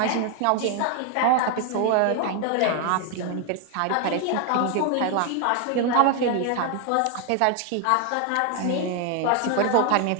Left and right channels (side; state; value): both; different; correlation 0.00